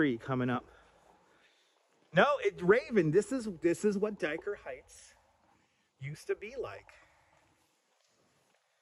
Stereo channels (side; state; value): both; identical; correlation 1.00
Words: coming up. No, Raven, this is what Dyker Heights used to be like.